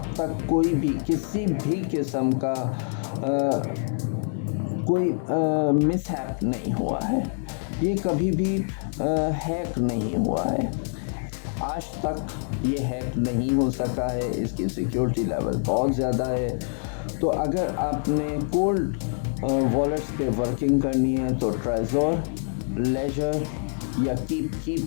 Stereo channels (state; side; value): silent; right; 61 dB below the other